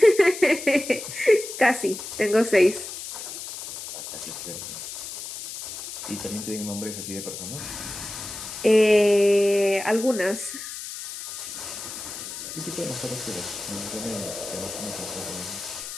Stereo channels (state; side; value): noise; left; hiss, 9 dB below the sound